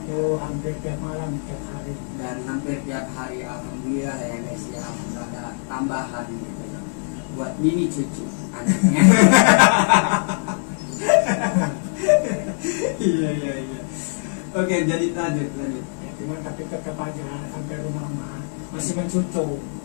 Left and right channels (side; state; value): right; silent; digital silence